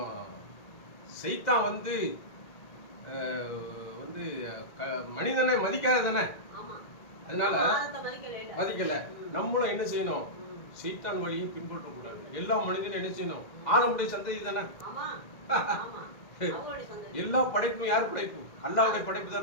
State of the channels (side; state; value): right; late; 1.9 ms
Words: சைத்தான் வந்து மனிதனை மதிக்காத தானே, அதனால மதிக்கல. நம்மளும் என்ன செய்யணும், சைத்தான் வழியை பின்பற்றக்கூடாது. எல்லா மனிதனும் என்ன செய்யணும், ஆதமுடைய சந்ததி தானே. எல்லா படைப்பும் யார் படைப்பு? அல்லாஹ்வுடைய படைப்பு